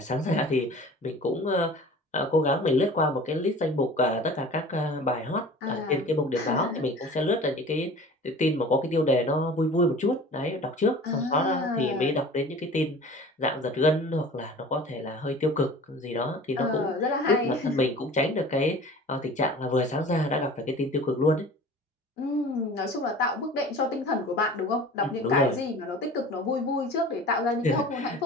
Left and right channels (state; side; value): normal; both; correlation 0.42